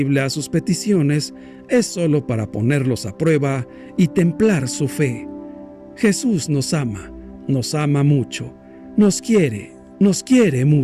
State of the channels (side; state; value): both; identical; correlation 1.00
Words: a sus peticiones, es solo para ponerlos a prueba y templar su fe. Jesús nos ama mucho, nos quiere